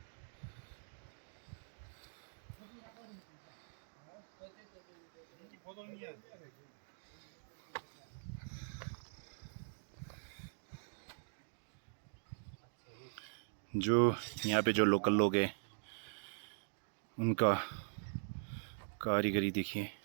जो यहाँ पे जो लोकल लोग हैं उनका कारीगरी देखिए,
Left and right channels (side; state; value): left; silent; digital silence